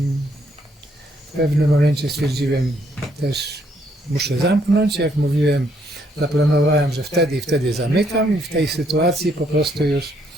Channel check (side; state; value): both; normal; correlation 0.71